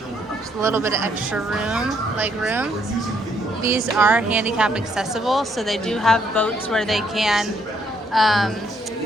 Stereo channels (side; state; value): both; normal; correlation 0.70